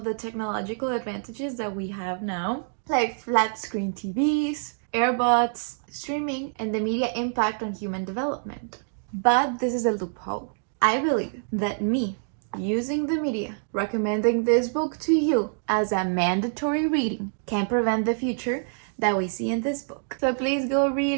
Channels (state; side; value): silent; left; digital silence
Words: the technological advantages that we have now, like flat screen TVs, earbuds, streaming, and the media impact on human development. But this is a loophole. I believe that me using the media, recommending this book to you as a mandatory reading, can prevent the future that we see in this book. So please go